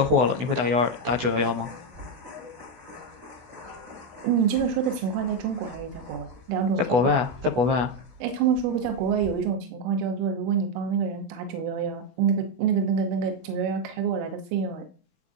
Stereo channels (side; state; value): left; late; 16 ms